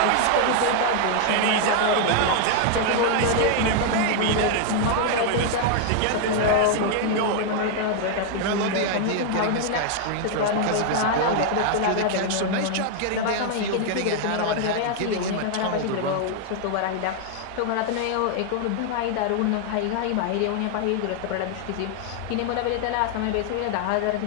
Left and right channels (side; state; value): both; different; correlation 0.00